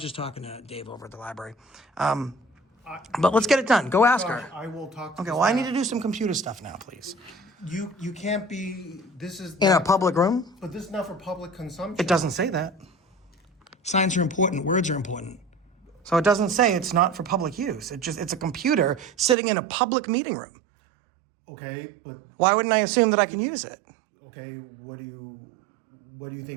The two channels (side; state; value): left; drops out; at 19.4 s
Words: just talking to Dave over at the library. But let's get it done. Go ask her. I will talk to Okay, the well, I need staff. to do some computer stuff now, please. You can't be, this is. In a not- public room? But this is not for public consumption. It doesn't say that. Signs are important, words are important. So it doesn't say it's not for public use. It's a computer sitting in a public meeting room. Okay, but, Why wouldn't I assume that I can use it? okay, what do you